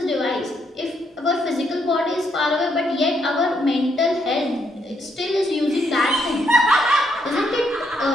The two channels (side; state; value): both; normal; correlation 0.75